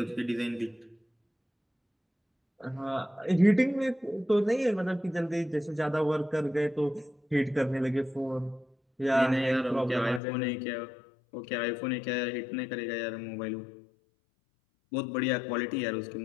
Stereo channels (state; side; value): drops out; right; at 10.2 s